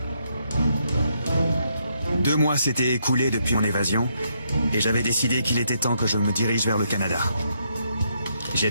2 mois s'étaient écoulés depuis mon évasion, et j'avais décidé qu'il était temps que je me dirige vers le Canada. J'ai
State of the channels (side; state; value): both; inverted; correlation -0.76